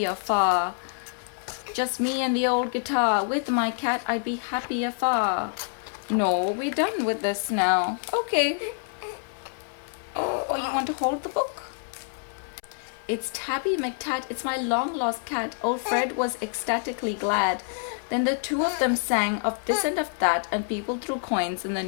far. Just me and the old guitar. With my cat, I'd be happier far. No, we're done with this now. Okay. Oh, you want to hold the book? It's Tabby McTat, it's my long lost cat. Old Fred was ecstatically glad. Then the two of them sang of this and of that, and people threw coins in the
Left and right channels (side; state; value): right; silent; 60 dB below the other